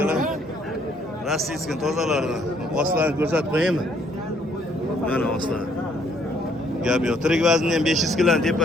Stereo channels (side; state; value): both; normal; correlation 0.66